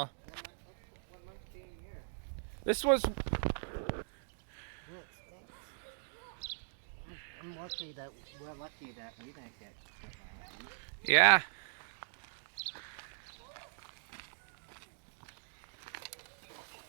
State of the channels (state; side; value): silent; left; digital silence